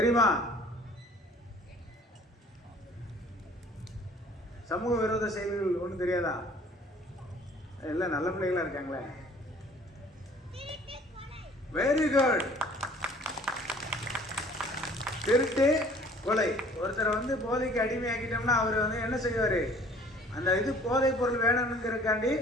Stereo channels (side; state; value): both; normal; correlation 0.53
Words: சமூக விரோத செயல்கள் ஒன்றும் தெரியாதா? எல்லாம் நல்ல பிள்ளைகளா இருக்காங்களே. Very good. திருட்டு, கொலை. ஒருத்தரை வந்து போதைக்கு அடிமையாக்கிட்டோம்னா அவர் வந்து என்ன செய்வார்? அந்த இது போதை பொருள் வேணும்ங்கிறக்காண்டி